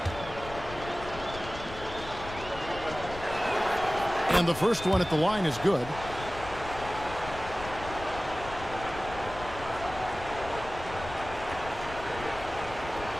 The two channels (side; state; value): left; noise; rumble, 12 dB below the sound